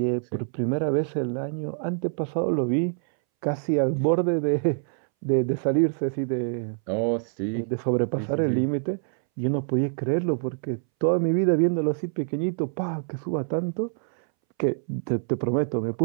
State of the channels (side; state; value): left; silent; 61 dB below the other